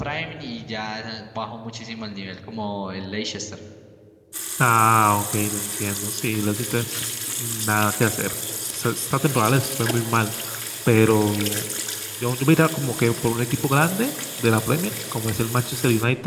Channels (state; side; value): identical; both; correlation 1.00